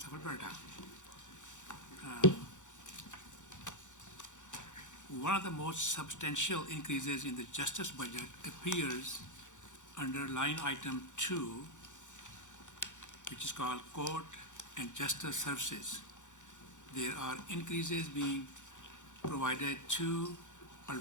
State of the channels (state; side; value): late; right; 1.5 ms